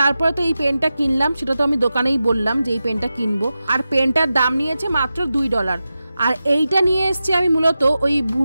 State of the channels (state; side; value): inverted; both; correlation -0.92